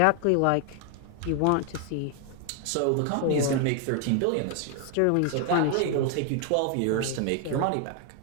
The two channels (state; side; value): different; both; correlation 0.00